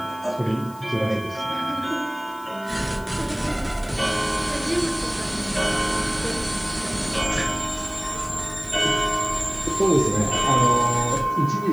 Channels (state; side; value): noise; left; hiss, 22 dB below the sound